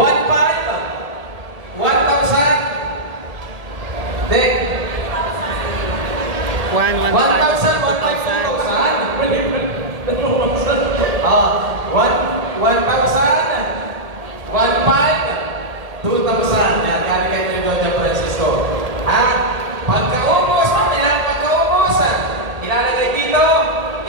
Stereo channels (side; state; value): left; late; 1.8 ms